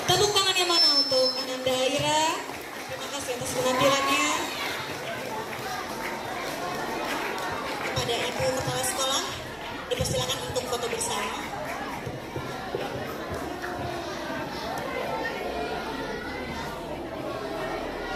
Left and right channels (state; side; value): identical; both; correlation 1.00